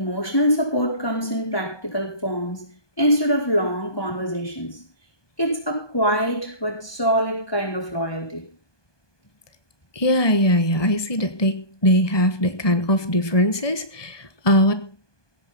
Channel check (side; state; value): right; late; 1.2 ms